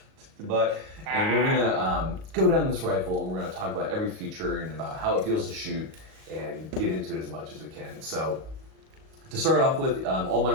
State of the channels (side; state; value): left; late; 38 ms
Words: and we're going to go down this rifle, and we're going to talk about every feature and about how it feels to shoot and get into it as much as we can. So to start off with, all my